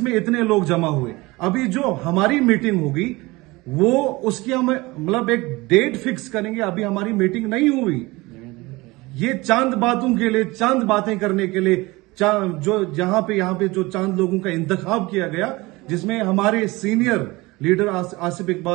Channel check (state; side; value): quieter; left; 22.1 dB